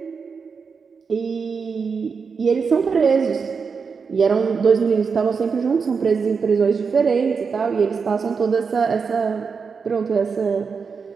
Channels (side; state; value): left; quieter; 5.5 dB